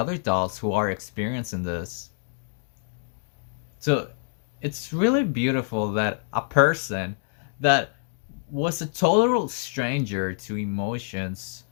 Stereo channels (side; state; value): right; silent; digital silence